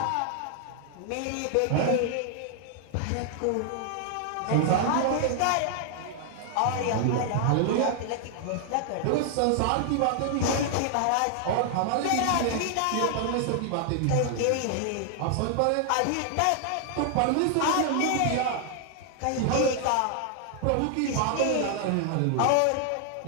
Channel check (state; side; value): different; both; correlation 0.00